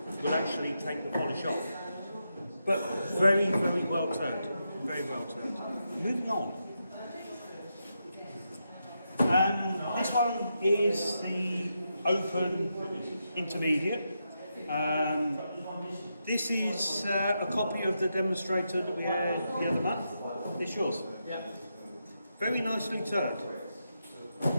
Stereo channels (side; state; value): both; inverted; correlation -0.85